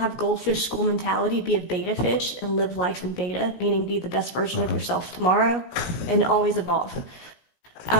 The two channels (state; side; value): late; right; 17 ms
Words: goldfish school mentality, be a beta fish and live life in beta, meaning be the best version of yourself tomorrow and always evolve.